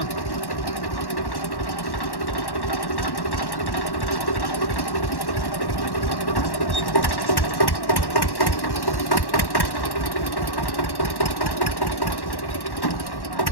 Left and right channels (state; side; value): late; right; 1.1 ms